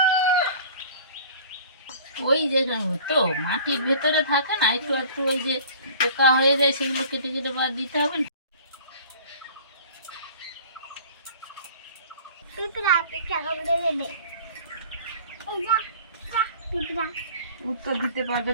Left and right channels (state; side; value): inverted; both; correlation -0.45